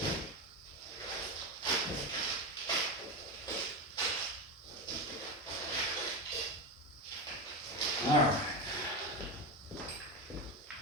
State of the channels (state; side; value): normal; both; correlation 0.16